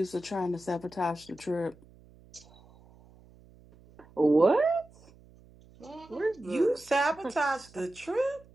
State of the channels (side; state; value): right; noise; hum, 25 dB below the sound